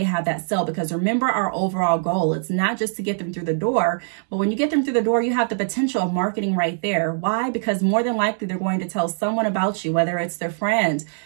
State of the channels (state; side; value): silent; left; 64 dB below the other